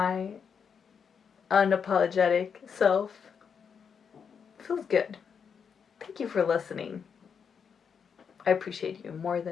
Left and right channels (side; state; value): right; quieter; 6.7 dB